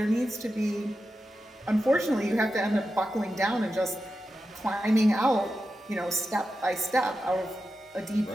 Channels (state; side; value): normal; both; correlation 0.90